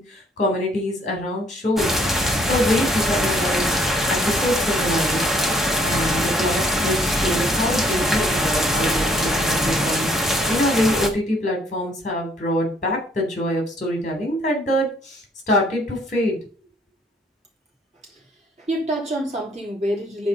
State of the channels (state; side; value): normal; both; correlation 0.64